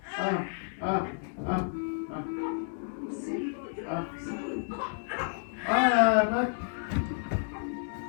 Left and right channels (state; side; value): silent; right; digital silence